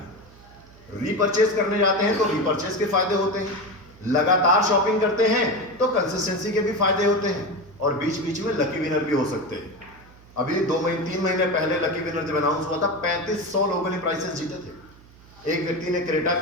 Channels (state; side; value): noise; right; hum, 24 dB below the sound